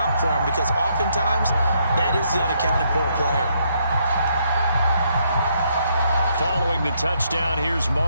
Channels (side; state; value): both; inverted; correlation -0.73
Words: for him, because oftentimes that is the unaccounted for player. Following the touchdown, here's